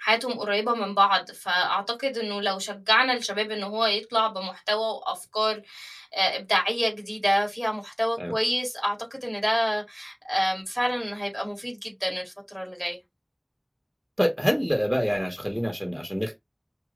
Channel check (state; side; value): identical; both; correlation 1.00